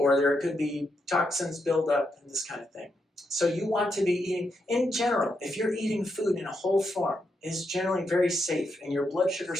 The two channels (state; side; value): normal; both; correlation 0.82